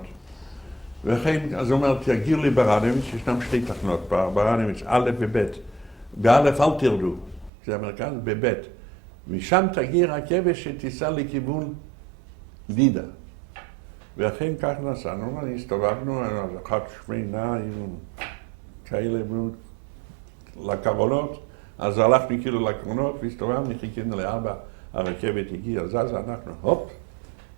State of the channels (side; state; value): left; drops out; at 7.5 s